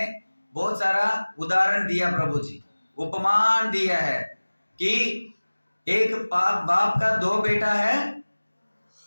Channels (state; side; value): inverted; both; correlation -1.00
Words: बहुत सारा उदाहरण दिया प्रभु जी, उपमान दिया है कि एक बाप का दो बेटा है,